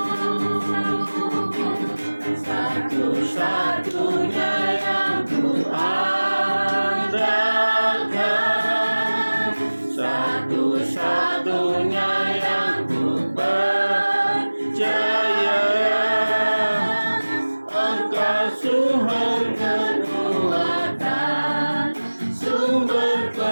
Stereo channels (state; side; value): inverted; both; correlation -1.00